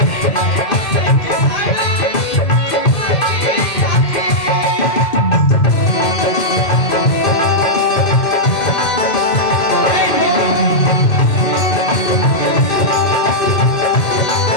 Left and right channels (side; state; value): right; late; 2.5 ms